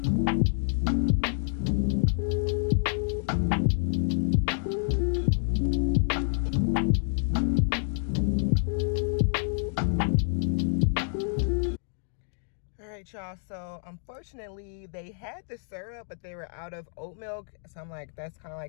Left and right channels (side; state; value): right; silent; digital silence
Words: Y'all, so unfortunately they had the syrup but they were out of oat milk, so I'm like, that's kind of